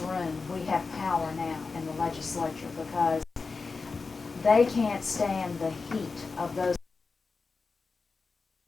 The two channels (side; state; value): right; quieter; 4.4 dB